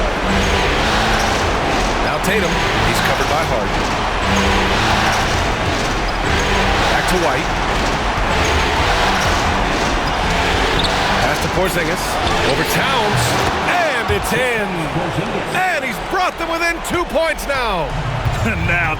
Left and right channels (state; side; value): identical; both; correlation 1.00